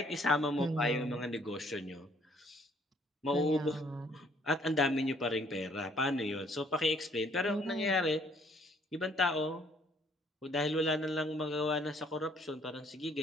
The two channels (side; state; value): both; normal; correlation 0.63